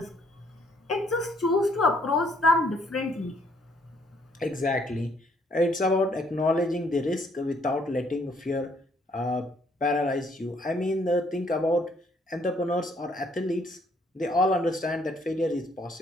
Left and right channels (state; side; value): normal; both; correlation 0.67